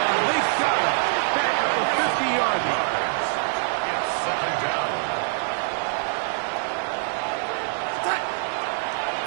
They got him. Back up the 50-yard line. It's 2nd down.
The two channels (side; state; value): left; silent; digital silence